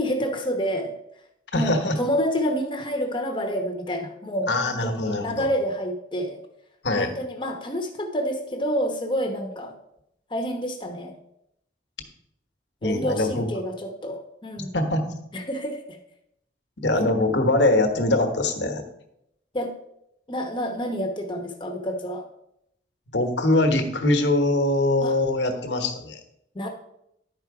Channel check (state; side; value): normal; both; correlation 0.25